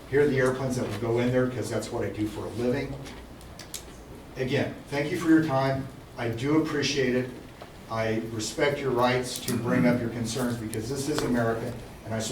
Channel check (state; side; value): identical; both; correlation 1.00